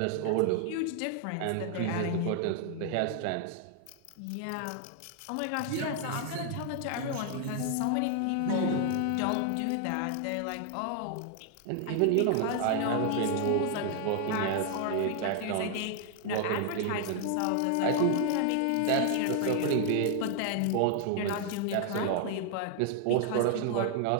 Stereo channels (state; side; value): different; both; correlation 0.00